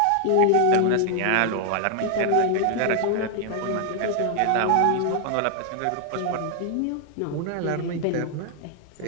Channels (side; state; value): both; different; correlation 0.00